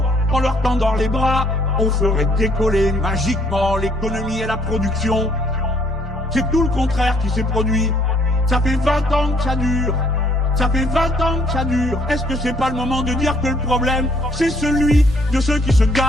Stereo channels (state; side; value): normal; both; correlation 0.64